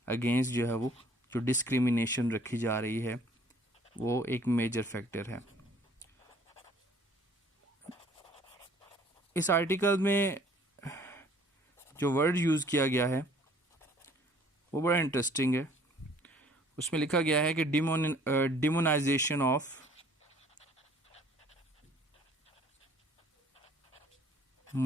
अगेंस्ट जो है वो जो डिस्क्रिमिनेशन रखी जा रही है वो एक मेजर फैक्टर है। इस आर्टिकल में जो वर्ड यूज़ किया गया है वो बड़ा इंटरेस्टिंग है। उसमें लिखा गया है कि डिमोनाइजेशन ऑफ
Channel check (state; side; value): normal; both; correlation 0.56